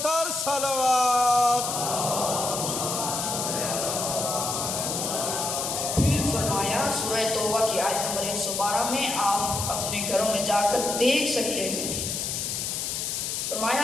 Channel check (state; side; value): noise; left; hiss, 2 dB below the sound